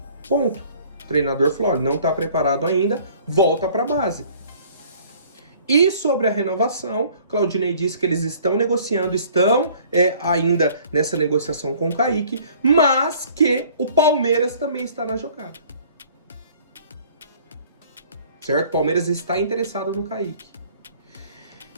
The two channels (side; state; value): both; inverted; correlation -0.54